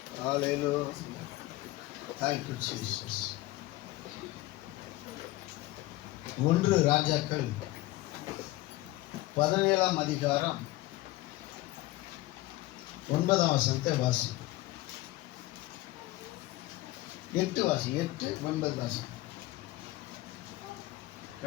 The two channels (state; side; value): quieter; right; 18.0 dB